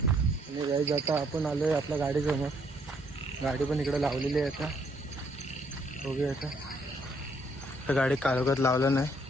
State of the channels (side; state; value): both; normal; correlation 0.68